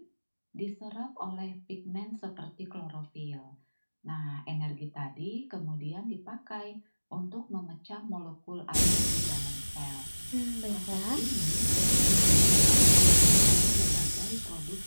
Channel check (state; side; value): inverted; both; correlation -1.00